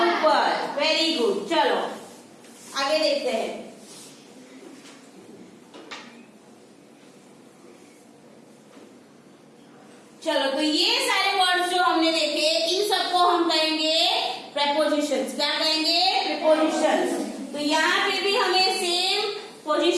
ऊपर। Very good. चलो आगे देखते हैं। चलो तो ये सारे वर्ड्स जो हमने देखे, इन सबको हम कहेंगे प्रेपोजिशंस। क्या कहेंगे? प्रेपोजिशंस। तो यहाँ पे भी हमें सेम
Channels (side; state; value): both; identical; correlation 1.00